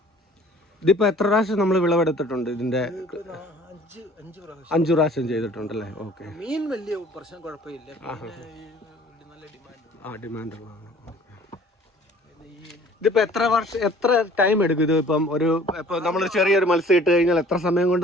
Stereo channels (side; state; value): both; normal; correlation 0.52